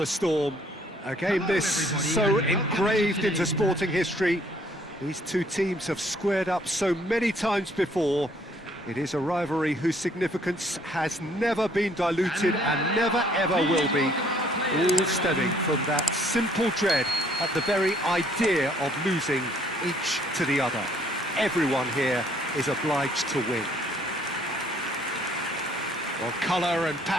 storm. A game this so engraved into sporting history. These two teams have squared up so many times before. It is a rivalry whose significance has never been diluted and never ever will be. All stemming from that simple dread at the very idea of losing each to the other. Everyone here is obliged to win. Well, colour and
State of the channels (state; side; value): normal; both; correlation 0.62